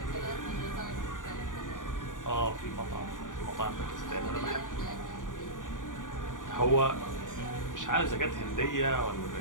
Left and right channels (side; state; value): right; late; 0.88 ms